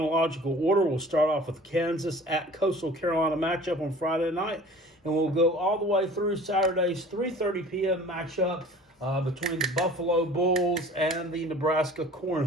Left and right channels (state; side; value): normal; both; correlation 0.45